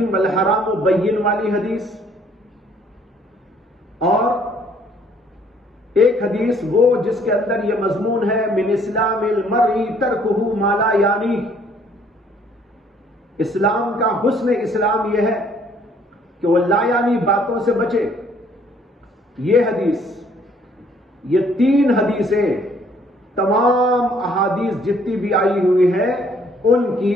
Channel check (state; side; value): normal; both; correlation 0.62